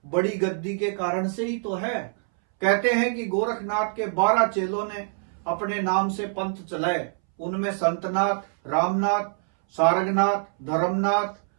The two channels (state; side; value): silent; left; 62 dB below the other